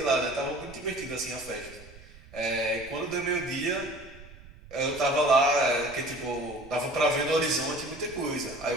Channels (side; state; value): right; noise; rumble, 19 dB below the sound